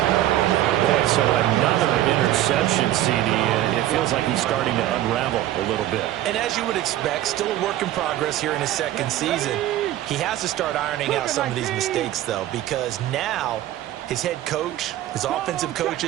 Boy, so another interception, CD. It feels like he's starting to unravel a little bit. And as you would expect, still a work in progress here in his 2nd season. He has to start ironing out some of these mistakes, though, because now his head coach, his offensive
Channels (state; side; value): quieter; left; 13.8 dB